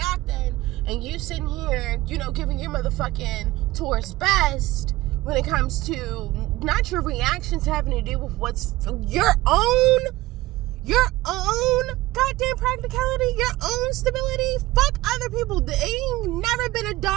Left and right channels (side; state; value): left; quieter; 18.2 dB